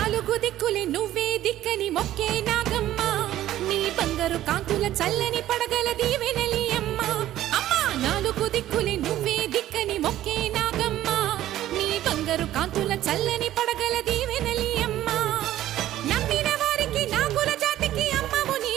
దిక్కులే నువ్వే దిక్కని మొక్కే నాగమ్మ నీ బంగారు కాంతుల చల్లని పడగల దీవెనలి అమ్మ అమ్మా నాలుగు దిక్కులే నువ్వే దిక్కని మొక్కే నాగమ్మ నీ బంగారు కాంతుల చల్లని పడగల దీవెనలి అమ్మ నమ్మిన వారికి నాగుల జాతికి అమ్మవు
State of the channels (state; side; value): quieter; left; 13.4 dB